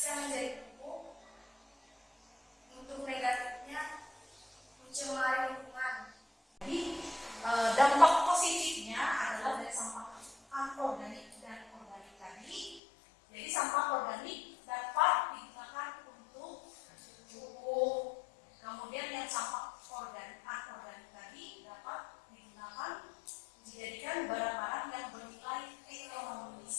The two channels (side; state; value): right; drops out; at 12.8 s